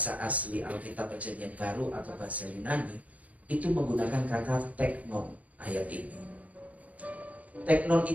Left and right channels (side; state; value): left; late; 0.069 ms